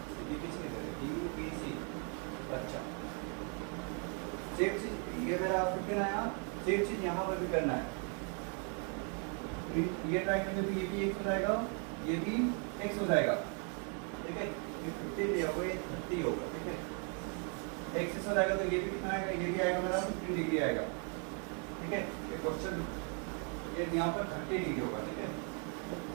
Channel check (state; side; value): quieter; left; 39.6 dB